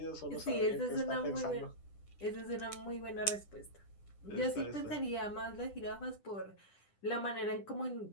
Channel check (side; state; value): right; late; 10 ms